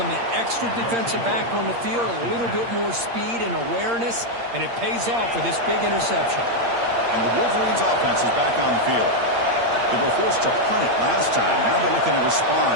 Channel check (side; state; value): left; late; 8.6 ms